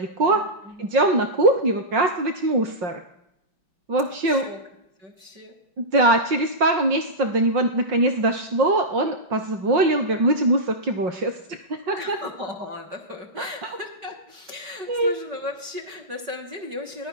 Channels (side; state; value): left; late; 5.3 ms